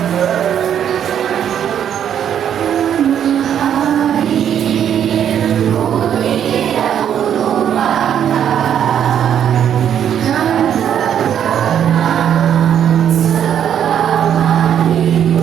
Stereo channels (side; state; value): left; quieter; 9.3 dB